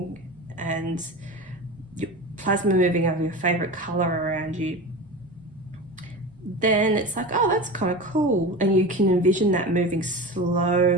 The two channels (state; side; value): normal; both; correlation 0.28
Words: and plasma moving of your favorite color around you, then it's like, oh, that's kind of cool. And you can envision that moving